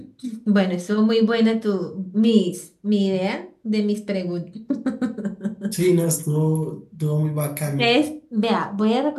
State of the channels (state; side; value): identical; both; correlation 1.00